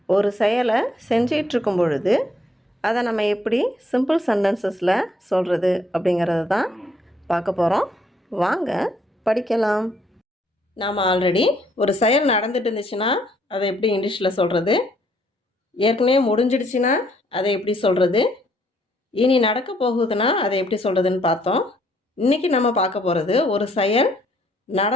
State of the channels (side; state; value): both; normal; correlation 0.68